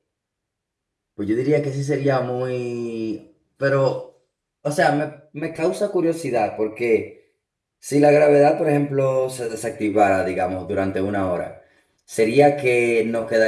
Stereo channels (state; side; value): identical; both; correlation 1.00